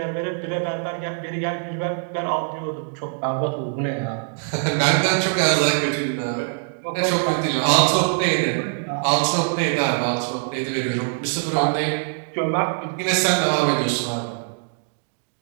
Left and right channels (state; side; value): silent; left; 63 dB below the other